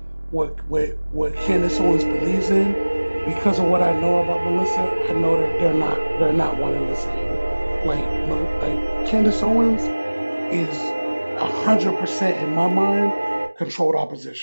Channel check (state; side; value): inverted; both; correlation -1.00